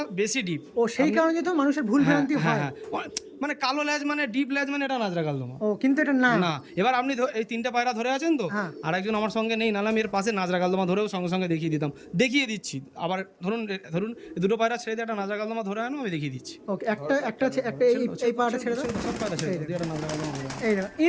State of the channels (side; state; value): both; identical; correlation 1.00